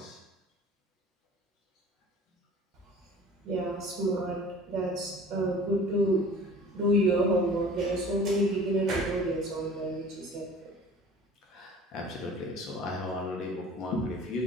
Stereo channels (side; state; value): both; normal; correlation 0.45